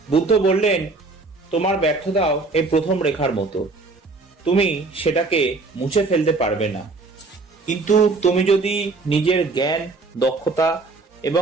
বুদ্ধ বললেন, তোমার ব্যর্থতাও এই প্রথম রেখার মতো। তুমি সেটাকে মুছে ফেলতে পারবে না, কিন্তু তুমি যদি নিজের জ্ঞান, দক্ষতা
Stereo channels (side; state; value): left; quieter; 3.7 dB